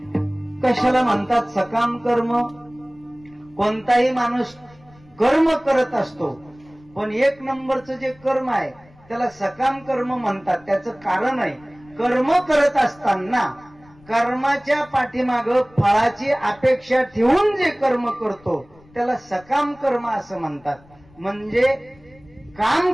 कशाला म्हणतात सकाम कर्म? कोणताही माणूस कर्म करत असतो, पण 1 नंबरचं जे कर्म आहे त्याला सकाम कर्म म्हणतात. त्याचं कारण आहे, कर्म करत असताना कर्माच्या पाठीमाग फळाची अपेक्षा ठेवून जे कर्म करतो त्याला सकाम कर्म असं म्हणतात. म्हणजे काम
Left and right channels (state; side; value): noise; left; rumble, 27 dB below the sound